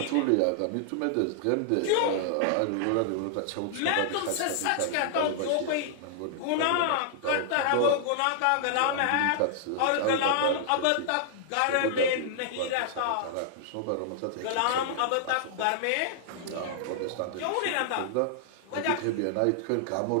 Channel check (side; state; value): both; different; correlation -0.01